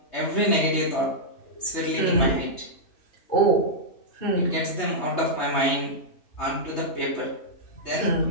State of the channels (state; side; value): late; right; 3.2 ms